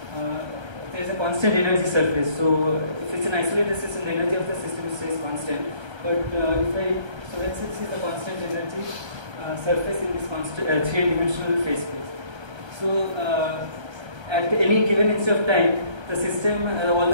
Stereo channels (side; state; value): left; late; 1.3 ms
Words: there is a constant energy surface. So if it's an isolated system, the energy of the system stays constant. But if I, so let's say this is the constant energy surface in this constant three-dimensional phase space. So at any given instant of time, the system, all